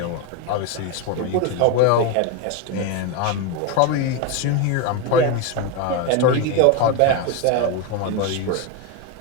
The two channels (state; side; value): different; both; correlation 0.02